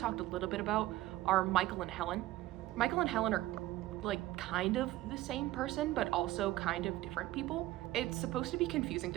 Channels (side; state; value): left; quieter; 16.4 dB